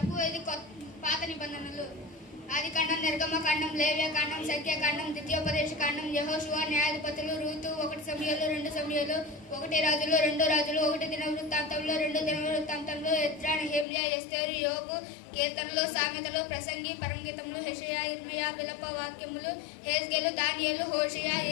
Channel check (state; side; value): drops out; right; at 13.9 s